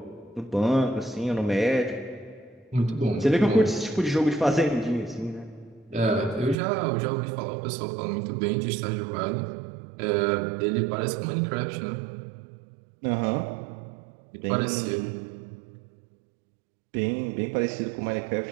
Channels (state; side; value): drops out; left; at 6.6 s